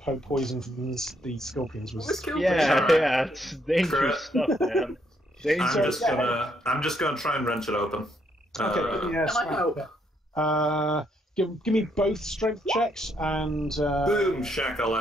poison from the scorpions was. Yeah, it's dangerous stuff, man. I'm just gonna try and wrench it open. Okay, Can I help? Give me both strength checks and Boom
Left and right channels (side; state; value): both; normal; correlation 0.73